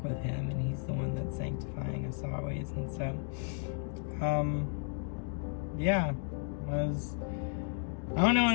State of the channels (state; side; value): quieter; right; 39.6 dB